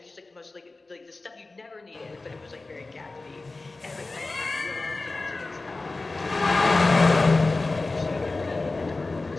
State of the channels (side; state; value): right; quieter; 3.4 dB